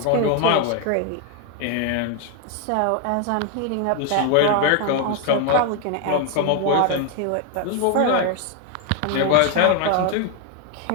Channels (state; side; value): different; both; correlation 0.01